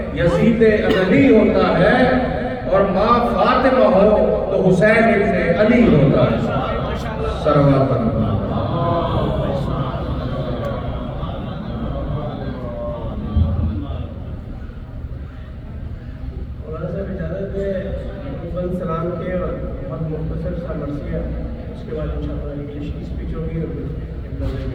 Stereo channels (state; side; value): identical; both; correlation 1.00